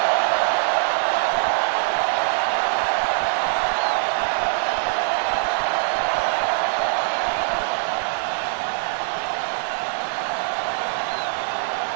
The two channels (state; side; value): silent; left; 64 dB below the other